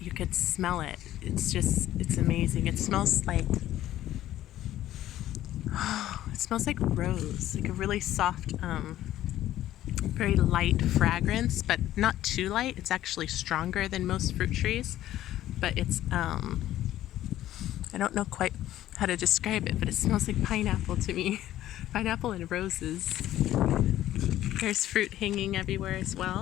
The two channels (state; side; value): quieter; right; 13.4 dB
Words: you could smell it. It's amazing. It smells like rose, like a really soft, very light fragrance, but not too light. It's actually stronger than most fruit trees, but it's, I don't know quite how to describe it, but it smells like pineapple to me. Pineapple and roses. There's fruit hanging everywhere as